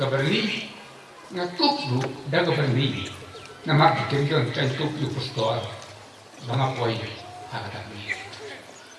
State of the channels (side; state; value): both; identical; correlation 1.00